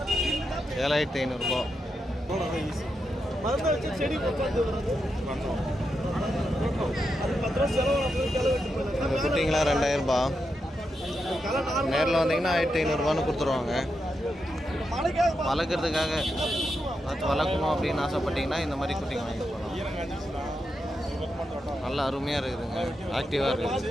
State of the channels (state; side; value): normal; both; correlation 0.85